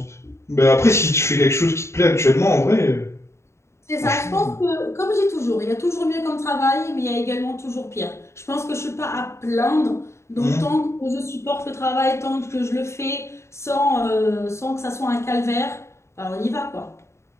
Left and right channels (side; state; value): right; late; 0.13 ms